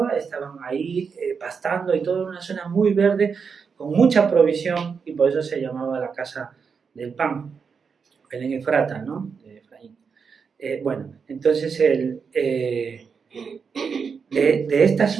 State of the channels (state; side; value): quieter; left; 5.8 dB